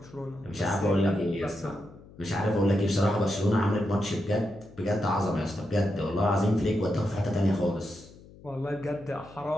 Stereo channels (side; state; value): left; noise; hum, 21 dB below the sound